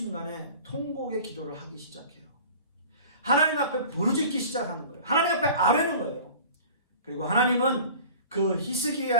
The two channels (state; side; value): inverted; both; correlation -0.42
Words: 통곡의 기도를 하기 시작해요. 하나님 앞에 부르짖기 시작하는 거예요. 하나님 앞에 아뢰는 거예요. 그리고 하나님은 그